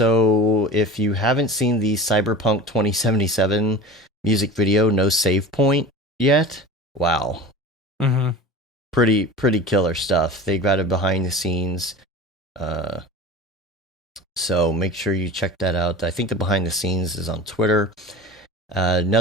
if you haven't seen the Cyberpunk 2077 music video, No Save Point, yet, wow. Pretty killer stuff. They got it behind the scenes. So make sure you check that out. I think the behind the scenes is on Twitter.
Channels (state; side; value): normal; both; correlation 0.35